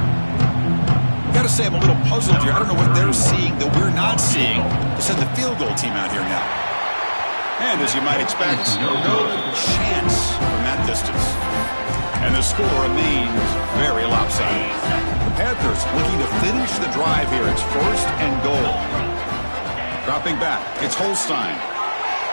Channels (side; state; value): both; inverted; correlation -1.00